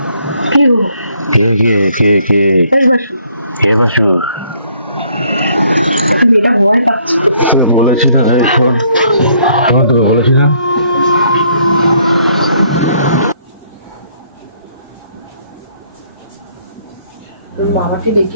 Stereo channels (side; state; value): both; inverted; correlation -0.66